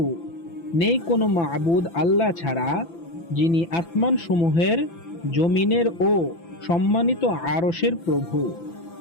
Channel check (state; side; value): late; right; 5.9 ms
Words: নেই কোনো মাবুদ আল্লাহ ছাড়া, যিনি আসমান সমূহের, জমিনের ও সম্মানিত আরশের প্রভু।